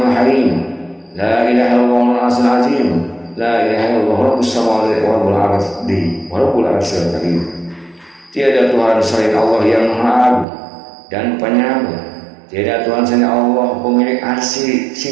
harim, la ilaha illallah al-azim azim, la ilaha illallah rabbus samawati wa rabbul ardi wa rabbul arsyil karim. Tiada Tuhan selain Allah yang Maha Agung dan Penyayang. Tiada Tuhan selain Allah pemilik arsy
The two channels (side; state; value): left; drops out; at 10.5 s